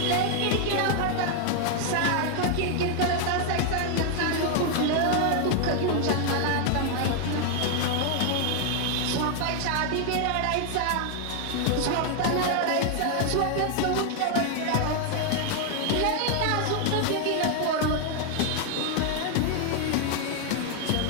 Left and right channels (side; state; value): both; different; correlation 0.00